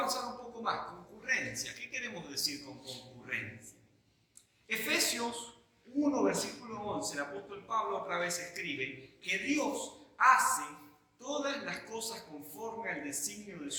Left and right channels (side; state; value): both; identical; correlation 1.00